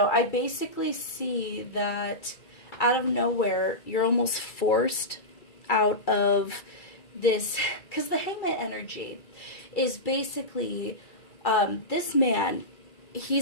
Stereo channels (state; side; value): late; right; 2.3 ms